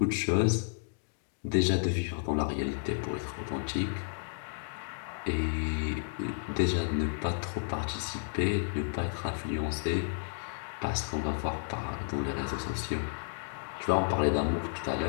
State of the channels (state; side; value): silent; right; digital silence